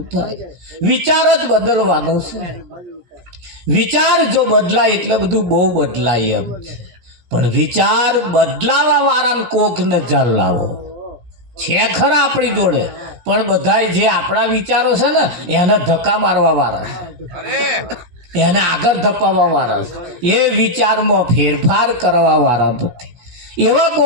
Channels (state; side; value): late; left; 17 ms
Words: થાય. વિચાર જ બદલવાનો છે. વિચાર જો બદલાય એટલે બધું બહુ બદલાય એમ છે. પણ વિચાર બદલાવા વાળાને કોકને જાલ લાવો છે ખરા આપણી જોડે, પણ બધા જે આપણા વિચારો છે ને એને ધક્કા મારવા વાળા છે, એને આગળ ધપાવવા વાળા છે. એ વિચારમાં ફેરફાર કરવા વાળા નથી. એવા